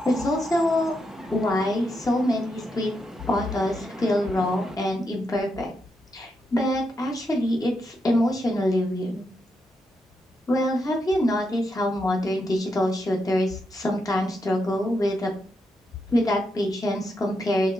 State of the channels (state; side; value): normal; both; correlation 0.83